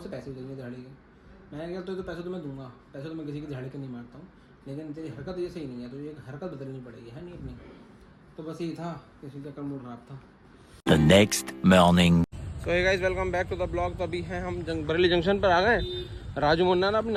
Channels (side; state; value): both; identical; correlation 1.00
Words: पैसे भी देंगे दिहाड़ी के। मैंने कहा तो पैसे तो मैं दूंगा, पैसे तो मैं किसी की दिहाड़ी के नहीं मारता हूँ, लेकिन तेरी हरकत ये सही नहीं है, तो ये हरकत बदलनी पड़ेगी, है नहीं अपनी। तो बस यही था, किसी चक्कर मूड खराब था। The next morning. So hey guys, welcome back to the blog. तो अभी हैं हम बरेली जंक्शन पर आ गए। राजू मुन्ना ना अपनी